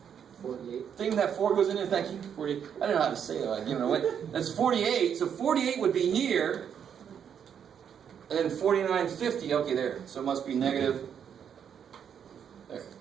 48. thing that 4 goes in it? Thank you. 48. I don't know how to say that. I've given it away. That's 48. So 48 would be here. And then 49, 50. Okay, there. So it must be negative. There.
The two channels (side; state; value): left; quieter; 8.1 dB